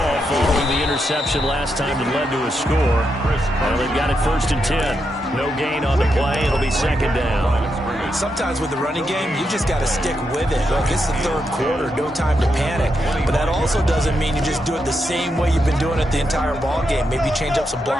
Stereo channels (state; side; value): normal; both; correlation 0.83